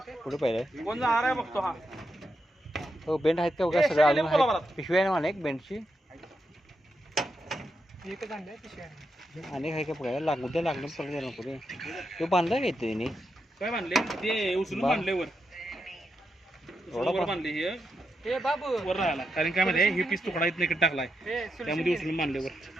कुठे पाहिजे कोण जाणार आहे बघतो हा हो बेंड आहेत का बघा सगळं अजून आहेत पिशवी आहे ना मला एक बेंडची एकच आणलंय पिशवी आणि काय काय बघायला उद्या लागलं परत नको रे तो बांधला का इथे तिने काय बांधले ते उचलून बांधले वर बांधले हे बाबू वर राहायला कारण काय मध्ये हे पीस तुकडा इथं इकडे टाकलाय त्यामध्ये उचलून बांधले वर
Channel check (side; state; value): both; normal; correlation 0.84